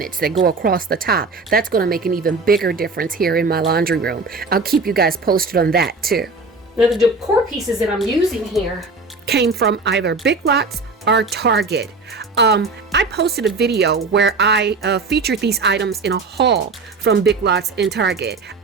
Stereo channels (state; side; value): quieter; left; 3.9 dB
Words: that go across the top. That's going to make an even bigger difference here in my laundry room. I'll keep you guys posted on that too. Now the decor pieces that I'm using here came from either Big Lots or Target. I posted a video where I featured these items in a haul from Big Lots and Target.